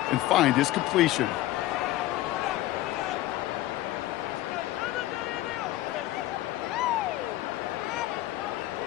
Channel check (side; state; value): right; quieter; 15.8 dB